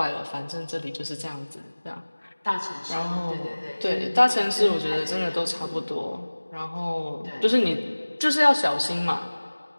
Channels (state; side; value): inverted; both; correlation -1.00